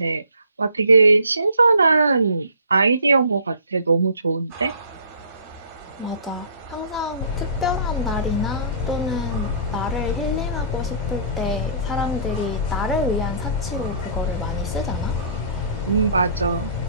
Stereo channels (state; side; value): inverted; both; correlation -0.51